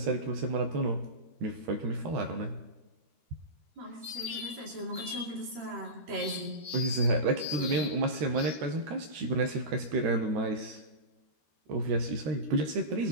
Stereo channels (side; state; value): left; late; 13 ms